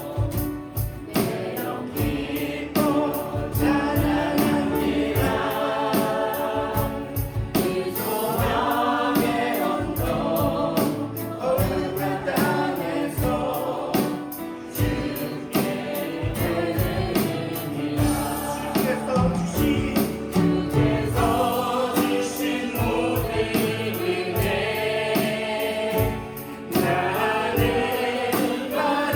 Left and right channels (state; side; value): identical; both; correlation 1.00